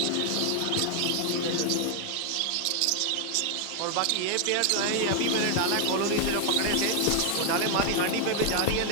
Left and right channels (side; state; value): both; different; correlation 0.00